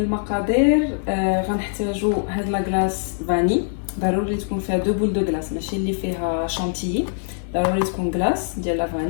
غنحتاجوا هاد لاكلاص فاني، ضروري تكون فيها دو بول دو كلاص، ماشي اللي فيها شانتيي، ضروري تكون كلاص ديال لا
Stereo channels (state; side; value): silent; right; 62 dB below the other